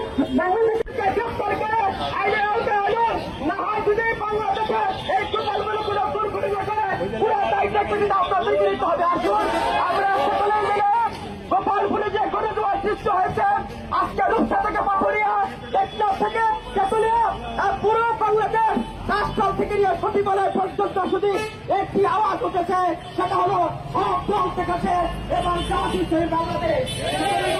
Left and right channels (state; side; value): identical; both; correlation 1.00